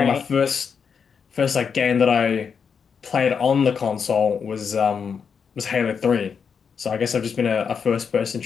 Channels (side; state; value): right; quieter; 6.4 dB